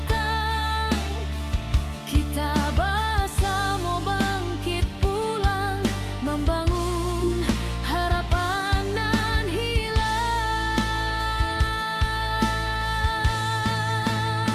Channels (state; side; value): identical; both; correlation 1.00